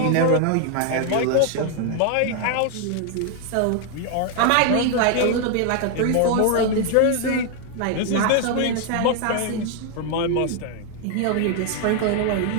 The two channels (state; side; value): different; both; correlation 0.00